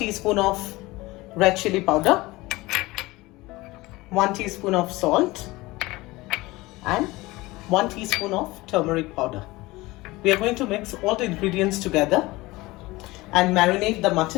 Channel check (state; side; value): quieter; right; 20.6 dB